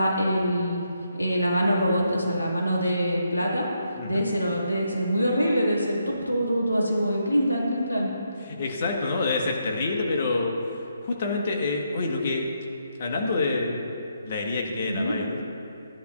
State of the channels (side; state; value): both; inverted; correlation -0.78